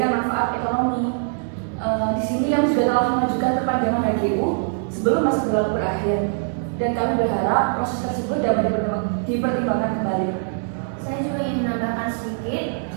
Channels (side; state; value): left; silent; digital silence